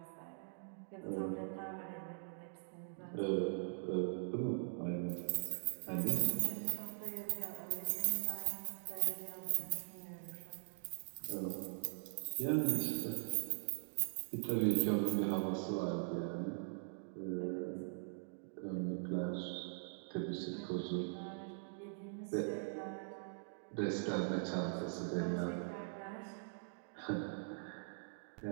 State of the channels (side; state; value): left; silent; digital silence